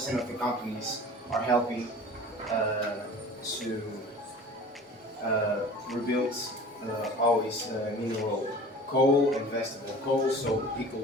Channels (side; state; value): both; normal; correlation 0.42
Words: of the companies are helping to rebuild always mineral coal and vegetable coal, so it